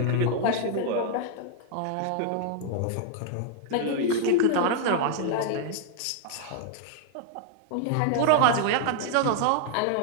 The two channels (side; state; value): both; different; correlation -0.01